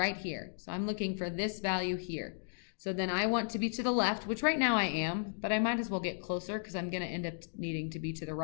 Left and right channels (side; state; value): right; silent; digital silence